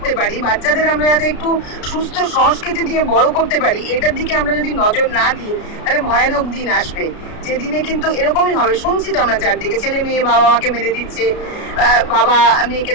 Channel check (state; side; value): late; right; 33 ms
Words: পারি, বাচ্চাদের আমরা যাতে একটু সুস্থ সংস্কৃতি দিয়ে বড় করতে পারি, এটার দিকে আমরা যদি নজর না দিই, তাহলে ভয়ানক দিন আসবে, যে দিনে কিন্তু এরকমই হবে। শুনছি তো আমরা চারদিকে, ছেলে মেয়ে বাবা মাকে মেরে দিচ্ছে, বাবা মেয়েকে